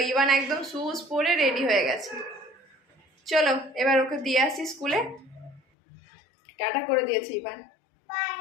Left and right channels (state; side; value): drops out; right; at 5.6 s